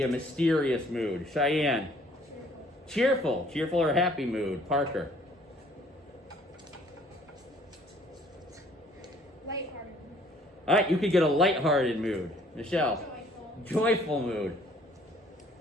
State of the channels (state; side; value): normal; both; correlation 0.58